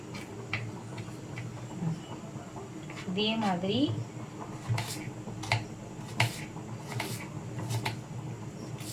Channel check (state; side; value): identical; both; correlation 1.00